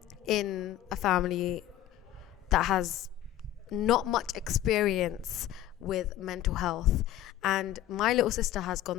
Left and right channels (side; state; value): right; quieter; 12.9 dB